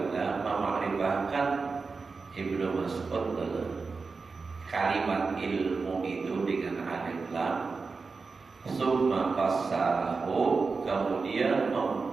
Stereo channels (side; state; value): left; quieter; 4.5 dB